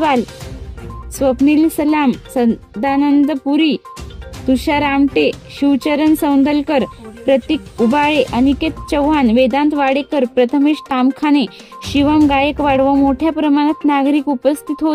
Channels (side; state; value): both; identical; correlation 1.00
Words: स्वप्नील सलाम, सदानंद पुरी, तुषार आमटे, शिवचरण सौंदलकर, प्रतीक उबाळे, अनिकेत चव्हाण, वेदांत वाडेकर, प्रथमेश तामखाने, शिवम गायकवाड व मोठ्या प्रमाणात नागरिक उपस्थित